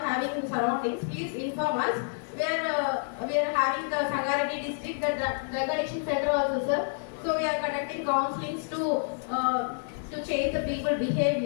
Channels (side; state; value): right; silent; digital silence